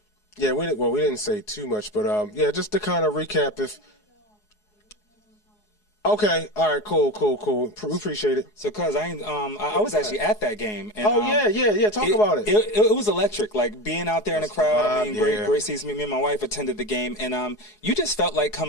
say too much, but just to kind of recap, Okay. All right. Cool. Appreciate it. So, cuz I was actually at that game. And, Oh yeah. Talk about it. It was electric. Like being out there in the crowd. I mean, yeah. great season. Me and my wife attended the game, and you just felt like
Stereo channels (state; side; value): late; right; 4.8 ms